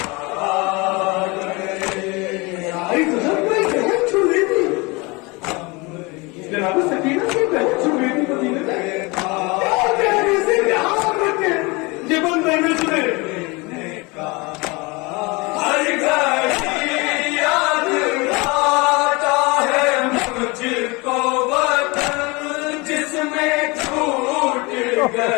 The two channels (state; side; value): quieter; right; 26.1 dB